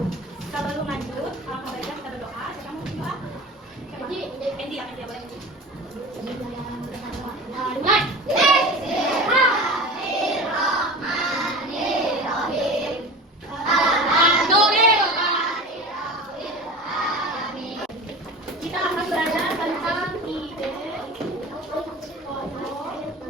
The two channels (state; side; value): normal; both; correlation 0.35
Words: Sebelum lanjut, alangkah baiknya kita berdoa. Siapa mau berdoa? Endi ya, Endi ya, boleh. Mulai. Kita akan belajar tentang ide pokok